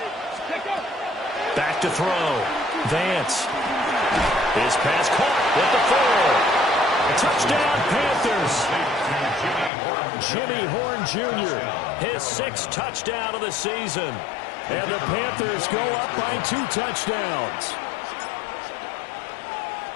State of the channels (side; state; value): right; drops out; at 9.7 s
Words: Back to throw. Vance. His pass caught with the 4. Touchdown, Panthers. Jimmy Horn Jr., his 6th touchdown of the season. And the Panthers go up by 2 touchdowns.